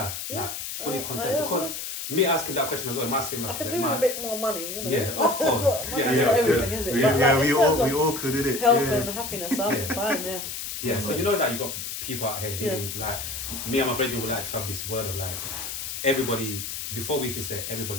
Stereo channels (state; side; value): noise; left; hiss, 6 dB below the sound